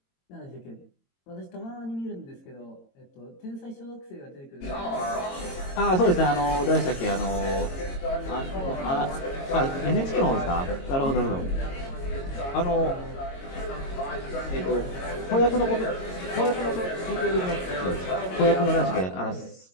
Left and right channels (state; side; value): late; right; 22 ms